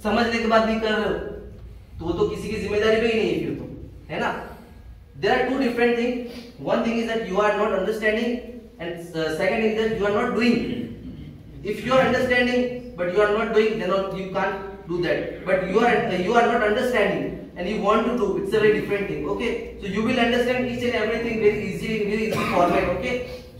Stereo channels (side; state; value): both; identical; correlation 1.00